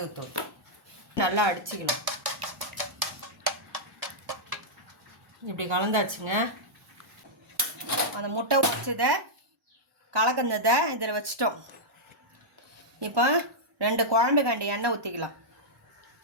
நல்லா அடிச்சுக்கலாம். இப்படி கலந்தாச்சுங்க. அந்த முட்டை உடைச்சதை கலக்கந்ததை இதில் வச்சிட்டோம். இப்போ 2 குழம்பு கண்டி எண்ணெய் ஊற்றிக்கலாம்.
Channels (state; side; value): normal; both; correlation -0.09